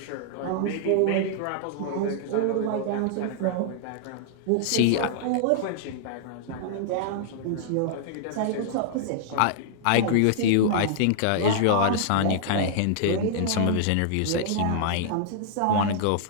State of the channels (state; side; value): different; both; correlation -0.01